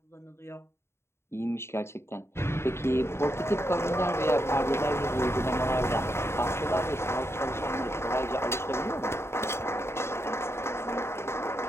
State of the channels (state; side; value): late; right; 0.12 ms